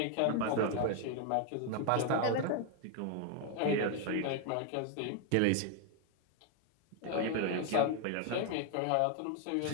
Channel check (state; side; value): different; both; correlation 0.00